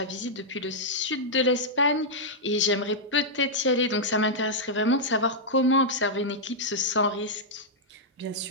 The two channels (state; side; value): normal; both; correlation -0.08